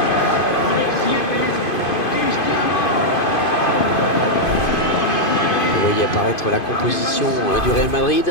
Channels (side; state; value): right; late; 2.5 ms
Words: Vous voyez apparaître la composition du Real